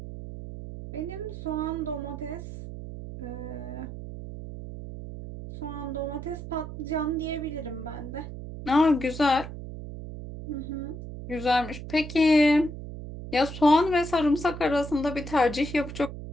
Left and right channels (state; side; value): noise; right; hum, 10 dB below the sound